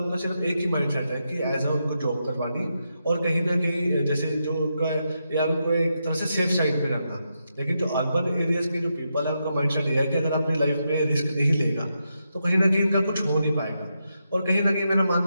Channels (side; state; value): both; inverted; correlation -0.84